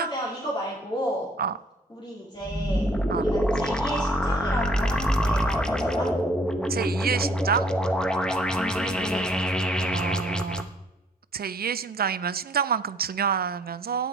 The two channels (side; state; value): both; normal; correlation 0.60